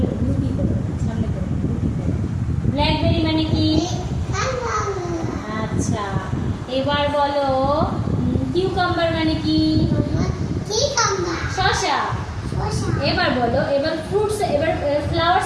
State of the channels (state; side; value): identical; both; correlation 1.00